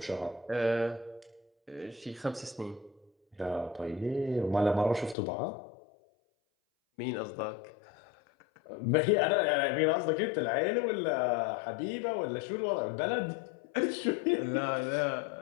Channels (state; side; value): drops out; right; at 5.2 s